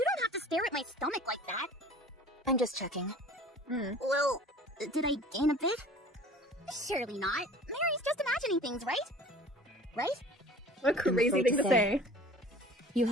don't have to stare at my stomach like that. I'm just checking. Well, did I gain a bit? Surely not. Mary's just imagining things, right? Right? What a crazy afraid thing to to say. say. You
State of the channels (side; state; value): both; normal; correlation 0.45